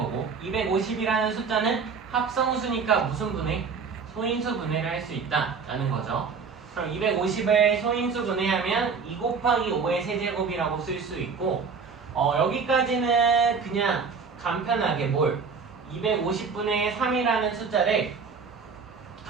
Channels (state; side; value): quieter; left; 5.4 dB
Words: 250이라는 숫자는 합성수니까 무슨 분해? 소인수 분해를 할 수 있다라는 거죠. 그럼 250을 소인수 분해하면 2 곱하기 5의 세제곱이라고 쓸 수 있고 여기까지는 그냥 간편하게 250분의 3이라는 숫자를